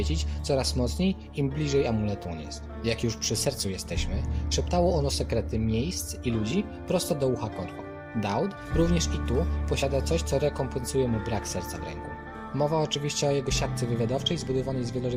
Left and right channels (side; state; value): both; identical; correlation 1.00